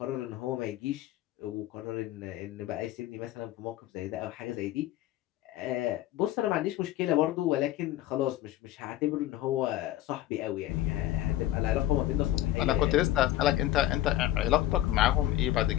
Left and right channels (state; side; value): quieter; right; 14.0 dB